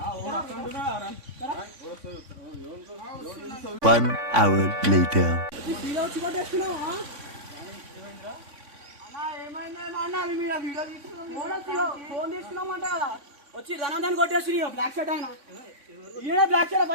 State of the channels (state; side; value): late; left; 3.5 ms